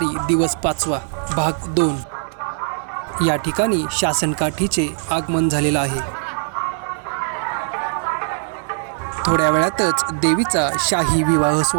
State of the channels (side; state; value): left; silent; digital silence